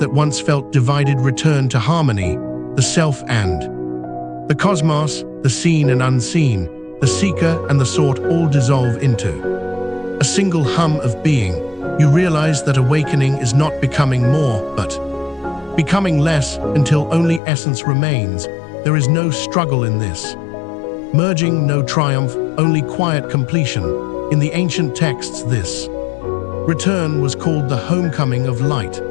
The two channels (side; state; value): right; drops out; at 17.4 s